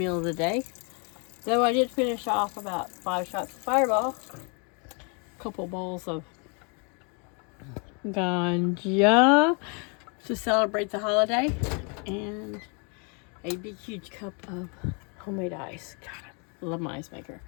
of the day. Though I did finish off about 5 shots of Fireball, a couple bowls of ganja to celebrate the holiday, and a big huge cup of homemade ice. God, I love my ice maker.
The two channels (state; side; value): quieter; right; 36.1 dB